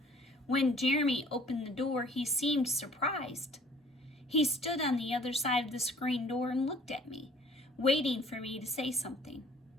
When Jeremy opened the door, he seemed surprised. He stood on the other side of the screen door and looked at me, waiting for me to say something.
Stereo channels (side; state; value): both; normal; correlation 0.54